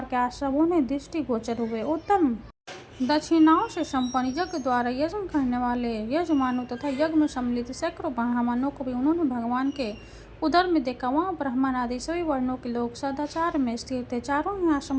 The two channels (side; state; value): both; identical; correlation 1.00